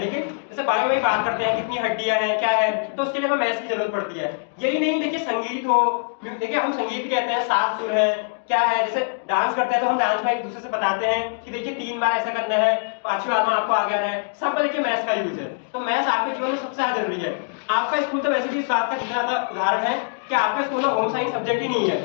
लेकिन जैसे बायो में बात करते हैं कितनी हड्डियां हैं क्या है, तो उसके लिए हमें मैथ्स की जरूरत पड़ती है। यही नहीं, देखिए संगीत हो, देखिए हम संगीत कहते हैं 7 सुर है क्या है, जैसे डांस करते हैं तो हम डांस में एक दूसरे से बताते हैं कि देखिए 3 बार ऐसा करना है, 5वीं बार में आपको आ गया है, सब पर देखिए मैथ्स का यूज है। तो मैथ्स आपके जीवन में सबसे ज्यादा जरूरी है। आपका स्कूल तो वैसे भी इस बात का ज्यादा उदाहरण है कि आपके स्कूल में होम साइंस सब्जेक्ट ही नहीं है।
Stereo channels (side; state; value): right; silent; digital silence